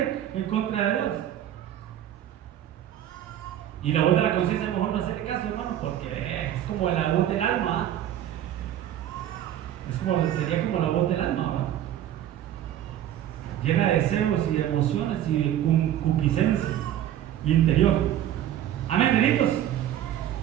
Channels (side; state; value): left; quieter; 11.5 dB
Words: en contra de Dios. Y la voz de la conciencia, mejor no hacerle caso, hermano, porque es como la voz del alma. Sería como la voz del alma, ¿verdad? Llena de deseos y de emociones y de concupiscencia interior. Amén, benitos.